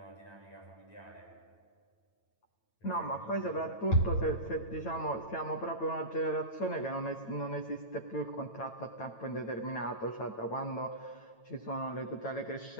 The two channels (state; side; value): late; right; 9.0 ms